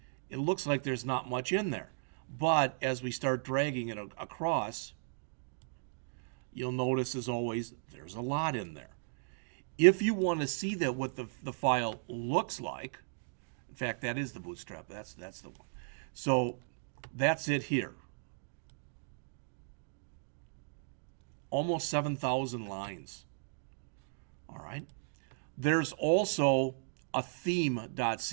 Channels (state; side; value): silent; left; digital silence